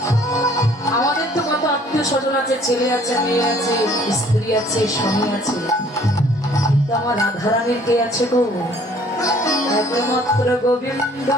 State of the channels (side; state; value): both; normal; correlation 0.57